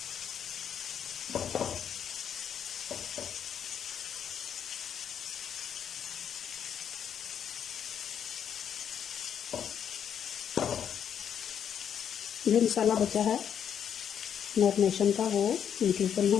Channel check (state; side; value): quieter; right; 8.5 dB